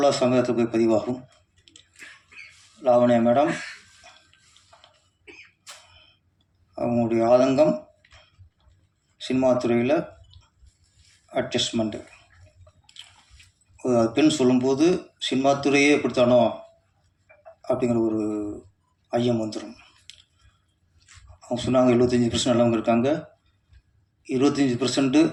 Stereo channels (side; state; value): both; identical; correlation 1.00